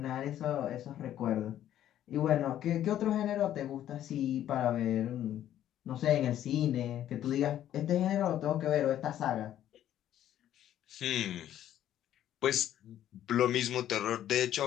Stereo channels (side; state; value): right; quieter; 11.6 dB